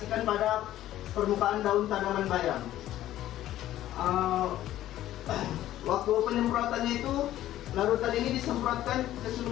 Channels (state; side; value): quieter; right; 13.4 dB